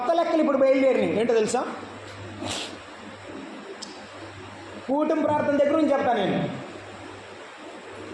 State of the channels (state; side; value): identical; both; correlation 1.00